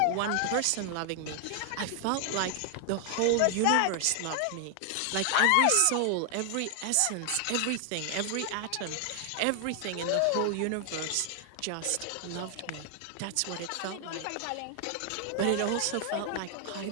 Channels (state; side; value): different; both; correlation 0.00